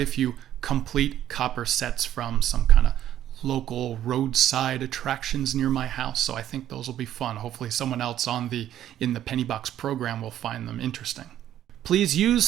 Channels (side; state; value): left; quieter; 11.6 dB